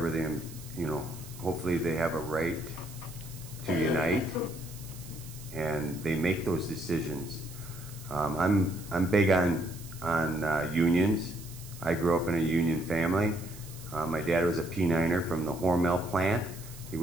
they, hopefully they have a right to unite, and they make those decisions. I'm big on unions. I grew up in a union family. My dad was a P9er from the Hormel plant. He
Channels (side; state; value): right; noise; hiss, 17 dB below the sound